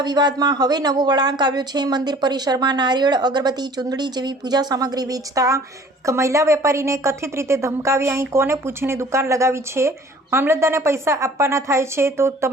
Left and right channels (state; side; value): normal; both; correlation 0.50